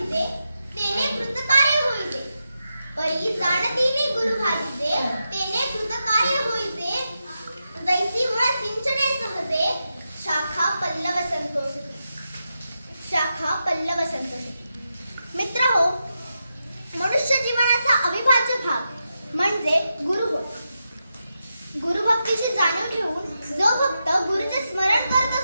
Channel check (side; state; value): both; inverted; correlation -0.87